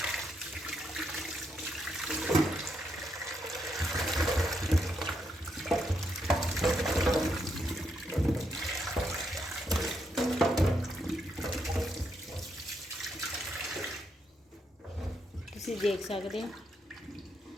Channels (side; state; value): both; normal; correlation 0.79